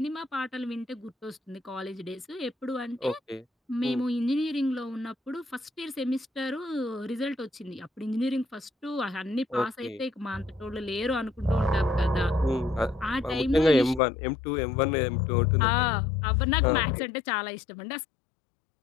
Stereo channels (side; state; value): right; drops out; at 14.0 s